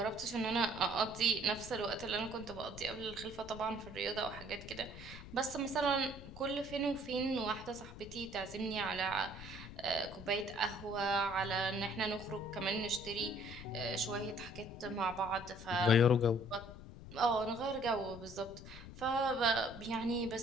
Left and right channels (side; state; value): left; noise; rumble, 14 dB below the sound